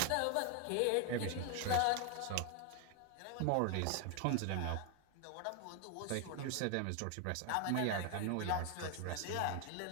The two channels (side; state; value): both; different; correlation 0.01